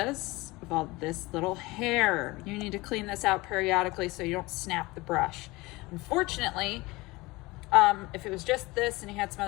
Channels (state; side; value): quieter; right; 22.0 dB